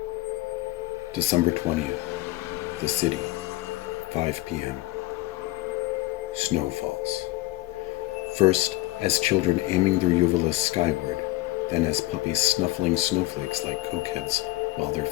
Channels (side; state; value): right; quieter; 19.1 dB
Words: December 20th. The city. 5 p.m. Snow falls. First, as children aiming their uvulas skyward, then as puppies snuffling snowflakes like cokeheads while their